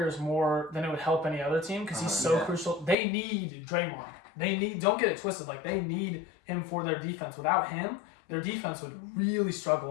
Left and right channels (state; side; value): drops out; right; at 3.0 s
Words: more than it would help any other team because he's so crucial. They need Draymond. Don't get it twisted. They need him for their defense. Without him, their defense would really